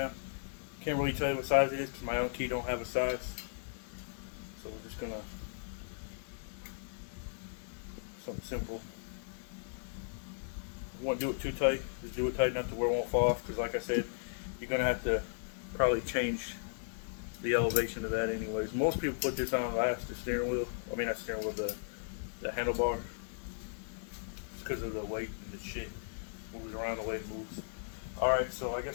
Can't really tell you what size it is because my own key don't have a size. So we're just gonna, something simple. You won't do it too tight, just do it tight enough to where it won't fall off, because like I said, you're gonna have to probably change the elevation of that anyways. Most people put this on last, the steering wheel. I mean not steering wheel, the handlebar. It's because of the weight and the shit moves around the way it moves. Alright, so I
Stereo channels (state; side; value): silent; right; 54 dB below the other